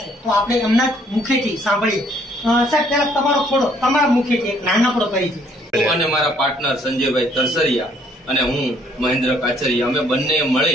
છે, તો આપણે એમના જ મુખેથી સાંભળીએ. સાહેબ, પહેલા તમારા મુખેથી એક નાનકડો પરિચય. અને મારા પાર્ટનર સંજયભાઈ તરસરિયા અને હું મહેન્દ્ર કાચરિયા, અમે બંને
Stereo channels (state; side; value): normal; both; correlation 0.64